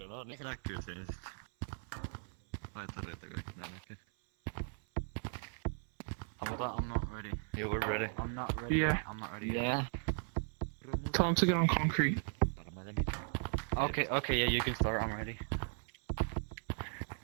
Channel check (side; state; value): left; silent; 53 dB below the other